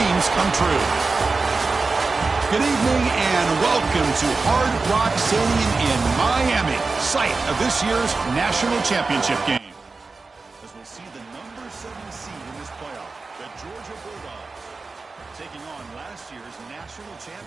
come true? Good evening and welcome to Hard Rock Stadium in Miami, site of this year's national championship game. As we'll see the number 7 seed in this playoff, the Georgia Bulldogs, taking on last year's national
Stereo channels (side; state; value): left; quieter; 4.0 dB